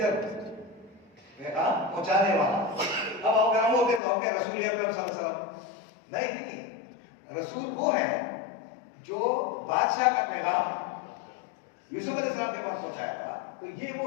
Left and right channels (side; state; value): right; drops out; at 4.0 s